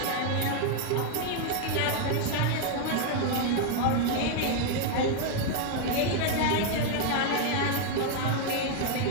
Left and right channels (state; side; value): different; both; correlation 0.01